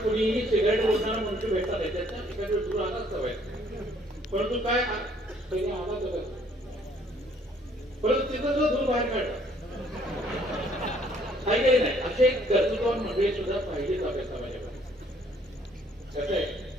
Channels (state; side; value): normal; both; correlation 0.62